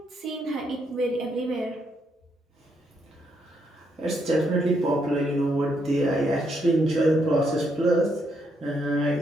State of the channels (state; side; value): normal; both; correlation 0.76